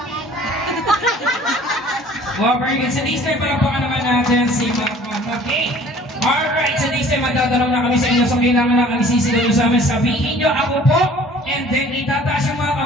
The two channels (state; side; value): normal; both; correlation 0.51